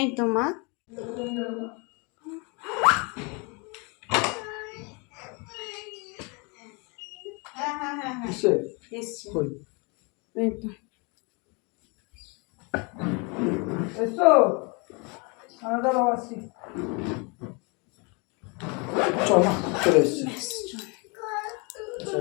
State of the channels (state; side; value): quieter; right; 31.2 dB